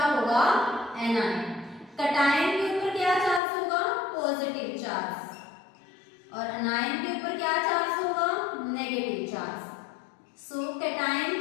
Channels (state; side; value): drops out; right; at 3.4 s